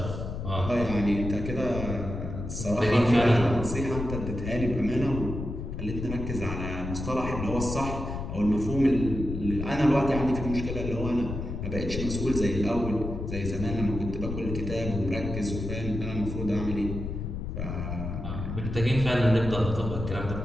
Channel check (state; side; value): noise; left; rumble, 5 dB below the sound